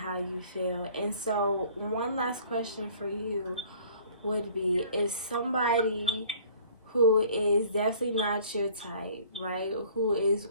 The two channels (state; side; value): inverted; both; correlation -0.53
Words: you feel. And so one last question for you would be, is somebody who is definitely not your type, right, who is